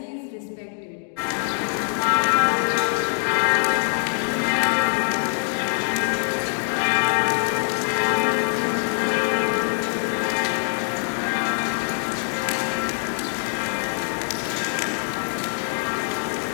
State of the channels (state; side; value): silent; right; digital silence